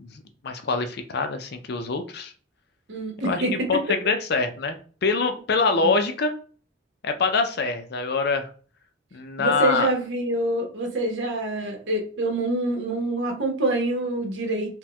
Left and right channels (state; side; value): normal; both; correlation -0.03